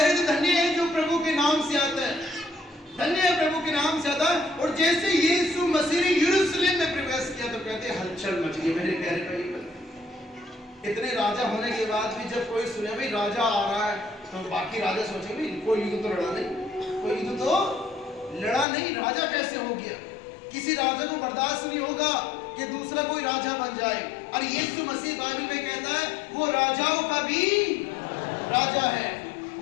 थे, धन्य है जो प्रभु के नाम से आता है, धन्य है प्रभु के नाम से आता है। और जैसे यीशु मसीह ने यरूशलेम में प्रवेश किया तो कहते हलचल मच गई मेरे प्यारे भाई। इतने राजा होने के बाद भी जब कोई सुने भाई राजा आ रहा है, तो बाकी राजा सोचे भाई कोई युद्ध तो लड़ा नहीं, कोई युद्ध तो लड़ा नहीं, राजा कैसे हो गया। किसी राजा को बर्दाश्त नहीं होगा कि दूसरा कोई राजा बन जाए। और यीशु मसीह बाइबल में कहता है वो राजाओं का भी राजा है,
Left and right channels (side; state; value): right; drops out; at 18.7 s